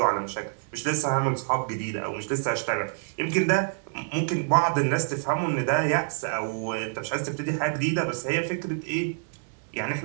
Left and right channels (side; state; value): left; silent; digital silence